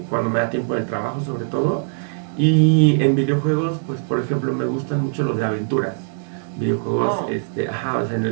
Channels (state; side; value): silent; left; digital silence